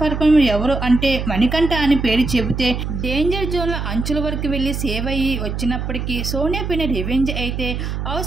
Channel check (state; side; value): noise; right; hum, 4 dB below the sound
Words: పర్ఫార్మర్ ఎవరు అంటే మణికంఠ అని పేరు చెబితే డేంజర్ జోన్లో అంచుల వరకు వెళ్ళి సేవ్ అయ్యి వచ్చినప్పటికీ సోనియా పైన రివెంజ్ అయితే